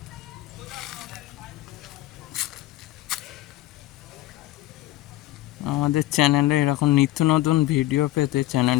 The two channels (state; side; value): quieter; right; 16.1 dB